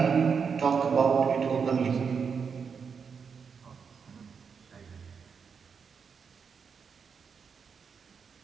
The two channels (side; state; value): left; quieter; 6.1 dB